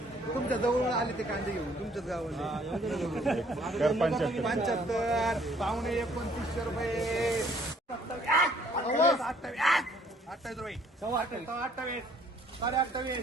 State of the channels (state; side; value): normal; both; correlation 0.61